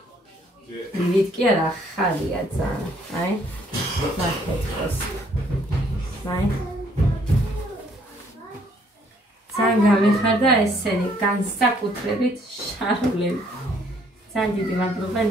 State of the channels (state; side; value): normal; both; correlation 0.65